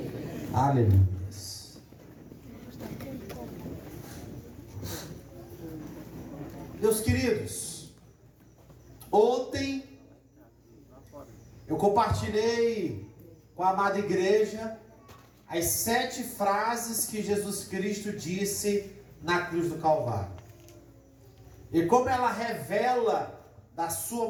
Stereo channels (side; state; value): both; identical; correlation 1.00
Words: Aleluia. Meus queridos, ontem eu compartilhei com a amada igreja as 7 frases que Jesus Cristo disse na cruz do Calvário. E como ela revela da sua